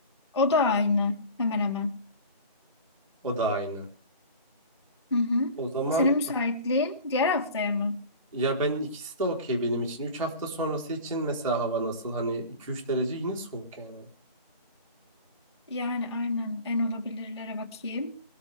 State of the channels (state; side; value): inverted; both; correlation -0.37